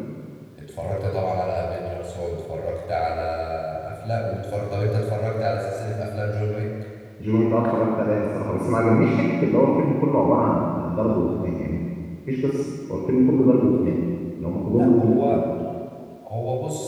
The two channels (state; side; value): identical; both; correlation 1.00